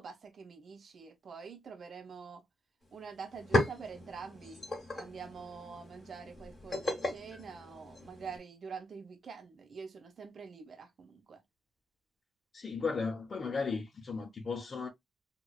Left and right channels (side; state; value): both; normal; correlation 0.80